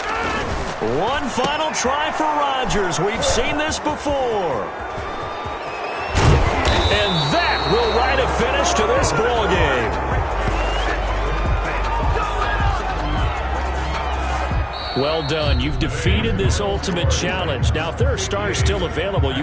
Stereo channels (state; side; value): identical; both; correlation 1.00